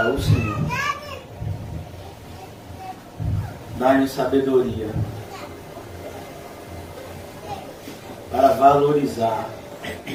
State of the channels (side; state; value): both; identical; correlation 1.00